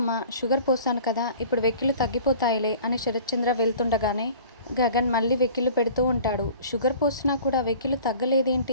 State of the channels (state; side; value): inverted; both; correlation -0.45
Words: షుగర్ పోసాను కదా, ఇప్పుడు వెక్కిళ్ళు తగ్గిపోతాయిలే" అని శరత్చంద్ర వెళ్తుండగానే గగన్ మళ్ళీ వెక్కిళ్ళు పెడుతూ ఉంటాడు. "షుగర్ పోసినా కూడా వెక్కిళ్ళు